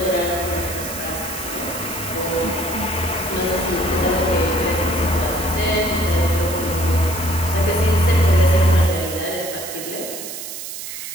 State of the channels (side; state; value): right; noise; hiss, 8 dB below the sound